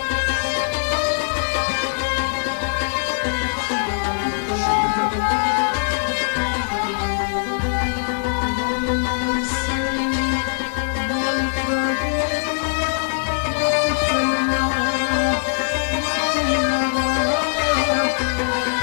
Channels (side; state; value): right; silent; digital silence